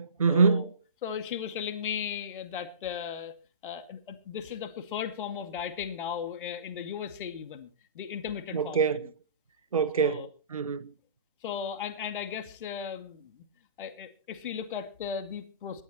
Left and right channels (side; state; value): both; inverted; correlation -0.38